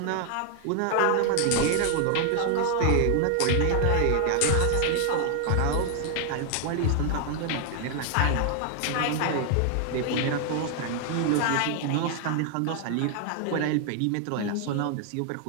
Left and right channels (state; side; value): different; both; correlation 0.00